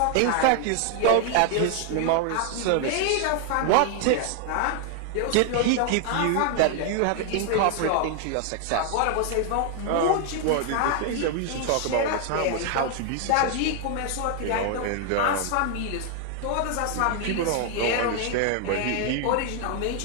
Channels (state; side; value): different; both; correlation 0.00